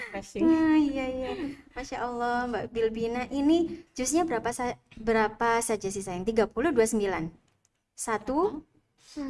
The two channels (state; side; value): identical; both; correlation 1.00